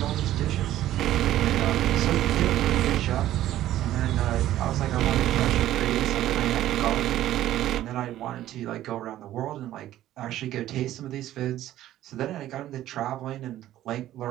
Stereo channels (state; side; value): quieter; left; 13.5 dB